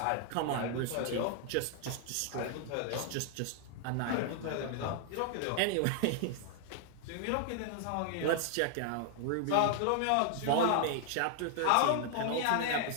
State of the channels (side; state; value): both; different; correlation 0.00